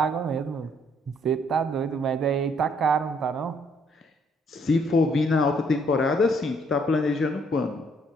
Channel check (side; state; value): both; normal; correlation 0.67